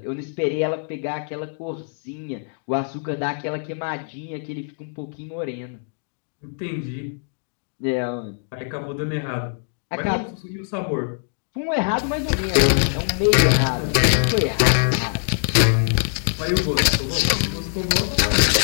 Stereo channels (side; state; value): right; silent; digital silence